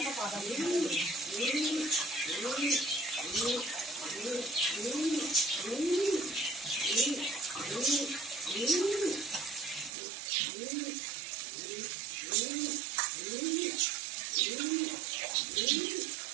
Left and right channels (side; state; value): left; drops out; at 9.9 s